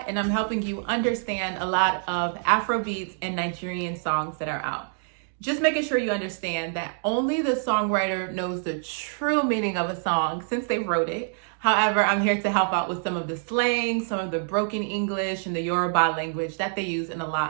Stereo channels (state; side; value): silent; left; digital silence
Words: and I'm helping you understand a lot of Afrobeats and Nigerian songs that are out. Just making sure you understand that only the songwriter knows the true meaning of a song since they wrote it. However, I'm here to help out with some of the slang, some of the broken English, and the Yoruba language that they use in a